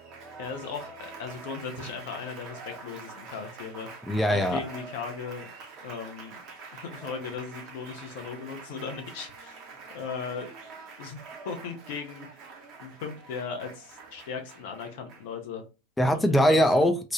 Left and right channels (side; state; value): both; normal; correlation 0.68